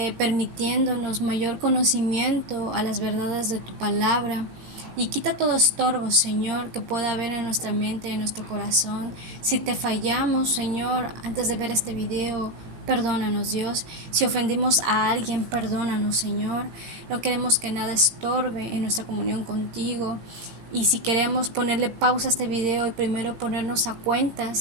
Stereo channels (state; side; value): late; left; 17 ms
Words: permitiéndonos mayor conocimiento a las verdades de tu palabra. Y quita todo estorbo, Señor, que pueda haber en nuestra mente, en nuestro corazón. Si te fallamos, Señor, antes de ver este video, perdónanos, Dios. Si ofendimos a alguien, perdónanos, Señor. No queremos que nada estorbe en nuestra comunión contigo. Y si queremos ponerle pausa a este video y primero ponernos a